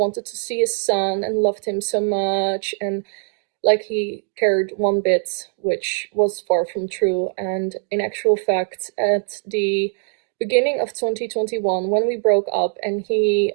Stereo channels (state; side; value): silent; left; 65 dB below the other